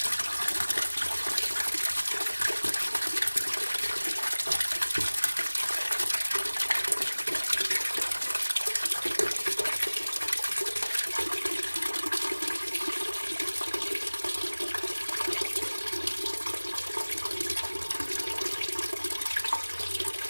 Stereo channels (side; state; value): both; inverted; correlation -1.00